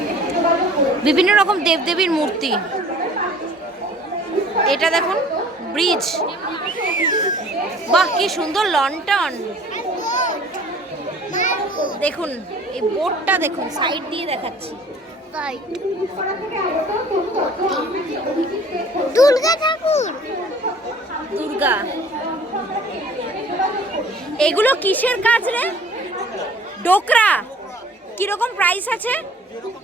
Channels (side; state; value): both; normal; correlation 0.50